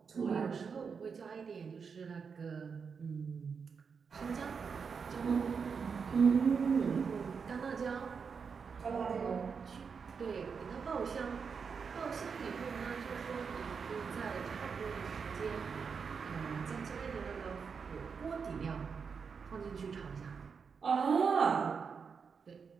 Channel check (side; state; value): left; quieter; 5.9 dB